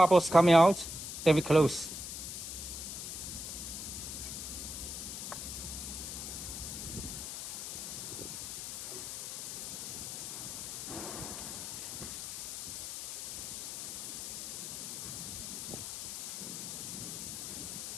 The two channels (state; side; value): noise; left; hiss, 6 dB below the sound